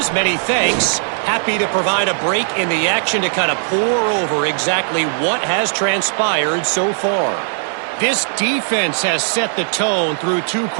many thanks. Happy to provide a break in the action to kind of pour over exactly what has transpired so far. This defense has set the tone through 2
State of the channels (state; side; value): silent; left; 60 dB below the other